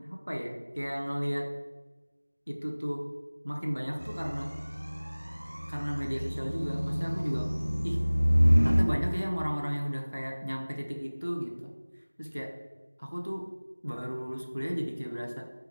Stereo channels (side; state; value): both; inverted; correlation -1.00